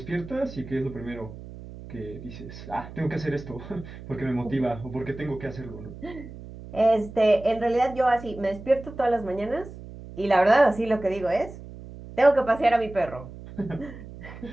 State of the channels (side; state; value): right; noise; hum, 14 dB below the sound